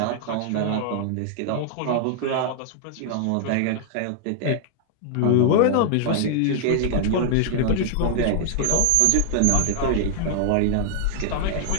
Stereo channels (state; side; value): different; both; correlation 0.00